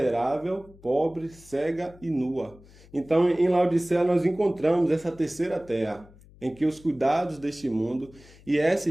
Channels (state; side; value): noise; left; hum, 24 dB below the sound